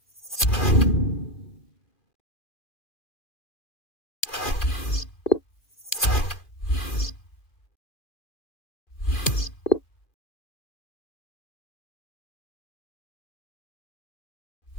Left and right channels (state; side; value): late; right; 2.4 ms